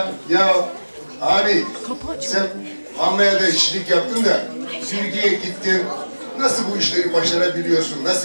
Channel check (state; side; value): inverted; both; correlation -1.00